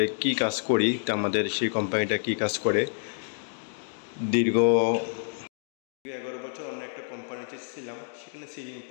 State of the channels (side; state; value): right; silent; digital silence